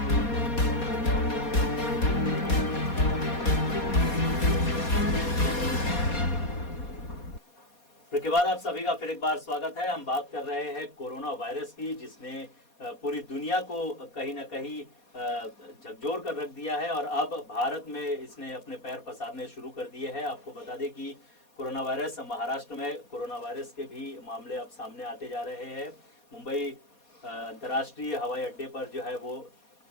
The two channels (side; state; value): right; late; 4.2 ms